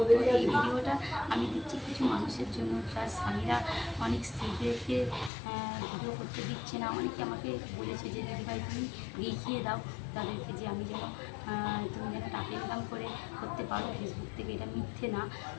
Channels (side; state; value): right; drops out; at 5.3 s